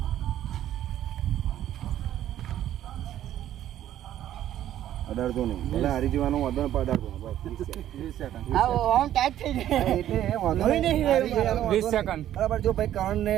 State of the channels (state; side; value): quieter; left; 12.0 dB